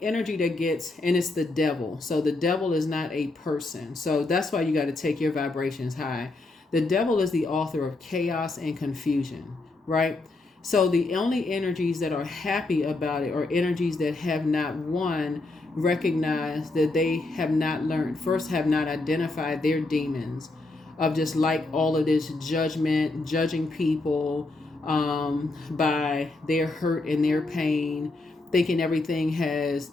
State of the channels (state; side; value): quieter; right; 3.1 dB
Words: energy that gets, and it's the devil. So the devil is not a person. So that's why you got to take your vibrations high. The devil is the author of chaos and confusion, right? So the only energies that are happy about it are energies that have not, one, recognized that they have not learned, first have not identified their demons of just like all of this judgment, judging people by their hurt and their pain, thinking everything has